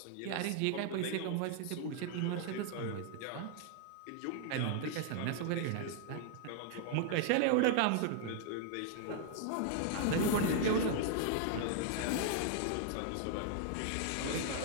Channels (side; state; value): both; different; correlation 0.00